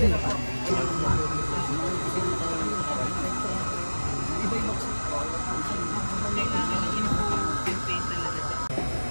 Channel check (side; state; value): both; inverted; correlation -1.00